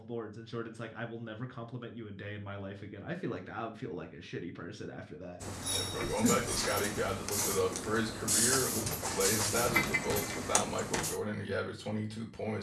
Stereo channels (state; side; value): identical; both; correlation 1.00